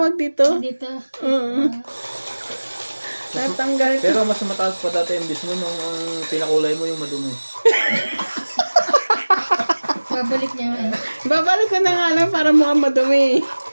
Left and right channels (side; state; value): both; inverted; correlation -1.00